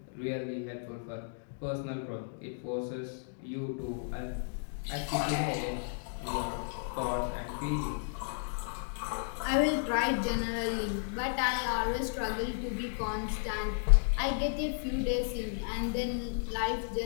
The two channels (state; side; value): silent; right; digital silence